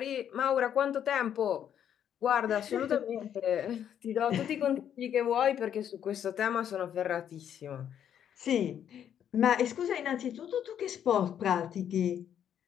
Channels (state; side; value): quieter; right; 9.4 dB